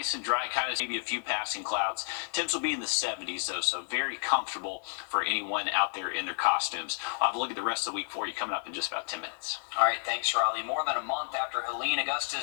and dry, kind of maybe a few passing clouds. Temps will be in the 70s, though, so very comfortable for anyone out there in their costumes. I'll have a look at the rest of the week for you coming up in just about 10 minutes. All right, thanks, Riley. More than a month after Helene,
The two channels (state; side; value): silent; right; 57 dB below the other